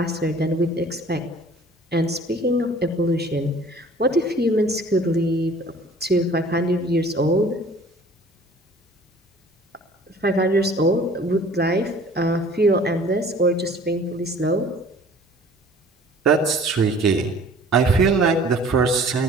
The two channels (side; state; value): both; normal; correlation 0.50